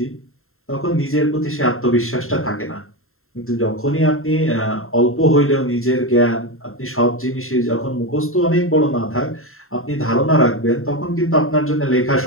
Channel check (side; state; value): right; late; 0.61 ms